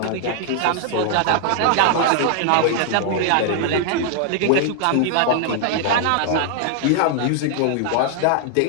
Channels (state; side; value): different; both; correlation 0.00